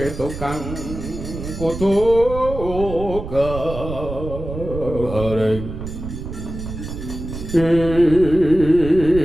kang kudu kering.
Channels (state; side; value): noise; right; rumble, 8 dB below the sound